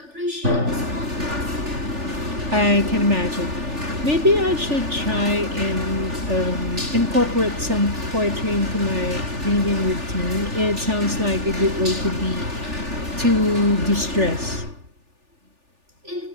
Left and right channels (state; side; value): late; left; 3.4 ms